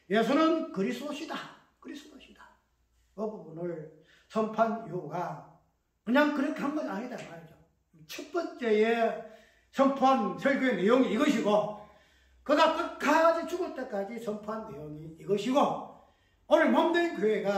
예수는 그리스도시다. 그 부분을 선포한 이유가 그냥 그렇게 한 건 아니다 말이죠. 첫 번째에 선포한 설교의 내용이 이것이고, 그가 끝까지 죽을 때까지 선포한 내용이 이것이고, 오늘 몸된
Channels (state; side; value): identical; both; correlation 1.00